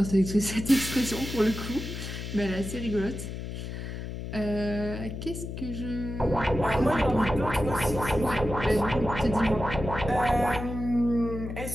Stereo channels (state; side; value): noise; left; hum, 7 dB below the sound